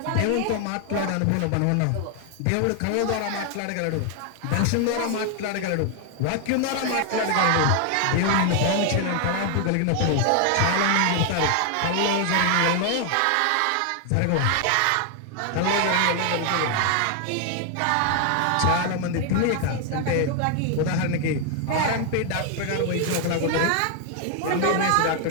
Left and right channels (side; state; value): both; different; correlation 0.00